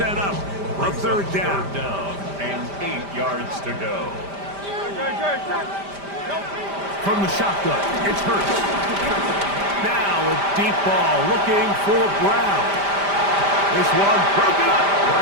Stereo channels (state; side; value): late; left; 5.0 ms